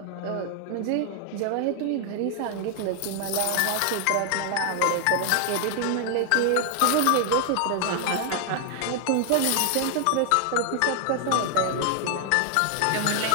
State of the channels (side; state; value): both; different; correlation 0.00